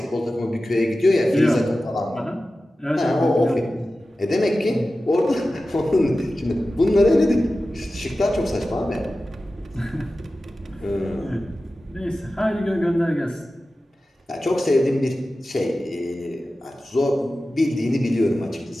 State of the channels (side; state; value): both; normal; correlation 0.94